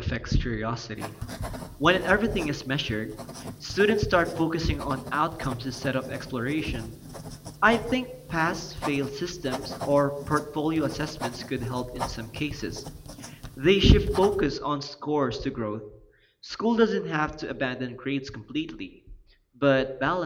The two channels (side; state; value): both; identical; correlation 1.00